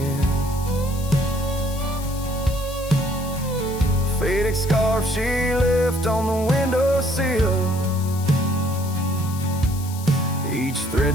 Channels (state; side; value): noise; left; hiss, 14 dB below the sound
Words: Faded scarf she left on the windowsill, each